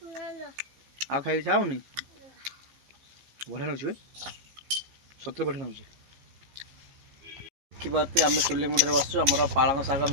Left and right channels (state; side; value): late; left; 15 ms